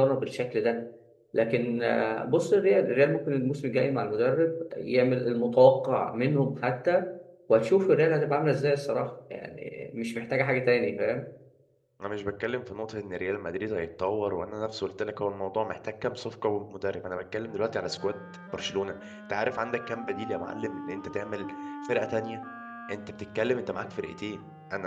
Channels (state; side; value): identical; both; correlation 1.00